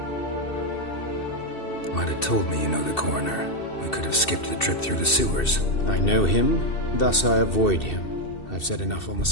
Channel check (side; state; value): right; late; 2.7 ms